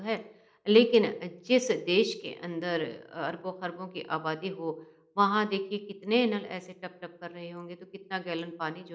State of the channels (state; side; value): identical; both; correlation 1.00